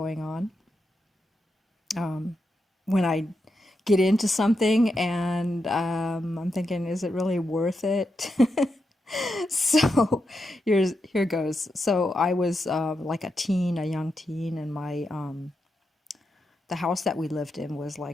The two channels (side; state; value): both; normal; correlation 0.86